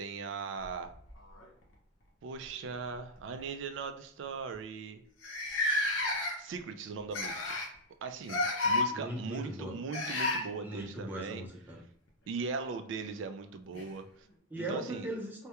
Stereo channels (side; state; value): both; normal; correlation -0.09